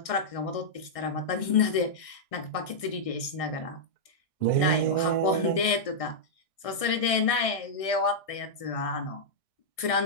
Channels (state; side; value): late; right; 1.6 ms